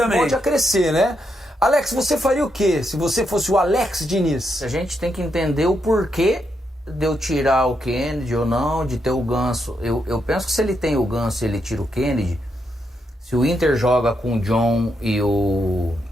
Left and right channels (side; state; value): both; normal; correlation 0.81